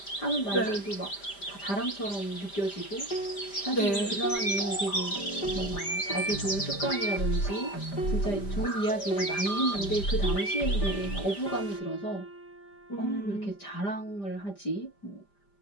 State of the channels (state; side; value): late; right; 5.0 ms